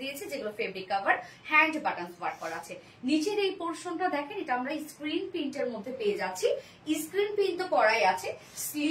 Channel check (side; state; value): both; identical; correlation 1.00